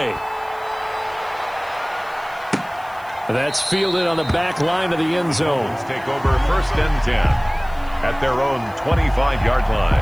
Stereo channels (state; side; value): noise; left; hiss, 26 dB below the sound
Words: That's fielded on the back line of the end zone. Let's take over 1st and 10 at their own 25-yard